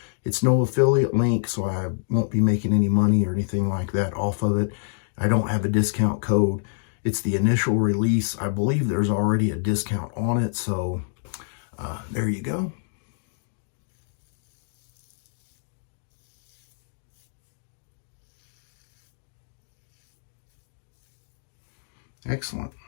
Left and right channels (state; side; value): silent; right; digital silence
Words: It's no affiliate link, so I won't be making any money or anything like that off of it. I don't have a discount code. It's the initial release. I believe there's already a discount on it, so there you go. Excellent.